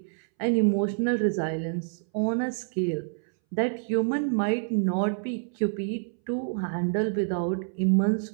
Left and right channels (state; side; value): silent; left; 60 dB below the other